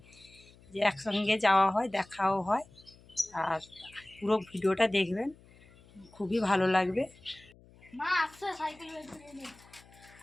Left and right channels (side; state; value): left; noise; hum, 25 dB below the sound